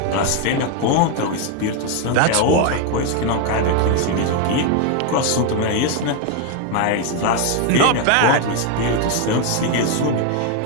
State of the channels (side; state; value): both; different; correlation 0.01